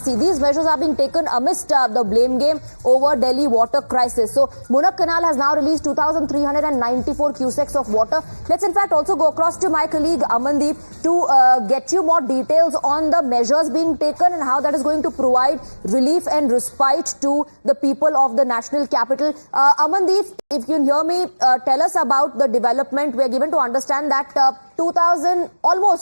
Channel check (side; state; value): both; inverted; correlation -1.00